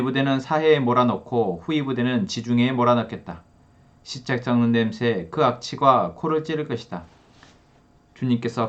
부대는 사해에 몰아넣고 후이 부대는 지중해에 몰아넣겠다. 시책 썩는 냄새 그 악취가 코를 찌를 것이다.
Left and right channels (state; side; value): identical; both; correlation 1.00